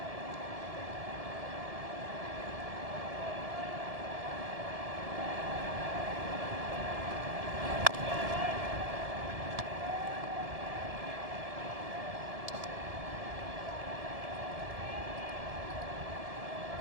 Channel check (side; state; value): left; late; 1.7 ms